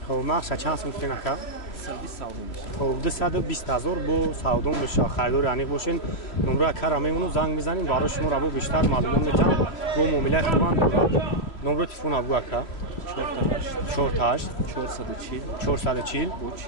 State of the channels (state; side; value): late; right; 3.0 ms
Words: хоб нақша чанд сум кинака? 220,000 бо савдо меша. харидори аниқ бошен. номро акара мемону занг мезанем барои шумо раво бештар маълумот метавон. бо муомилаи хубан дорад. номро телефон абгӯ ака 48 440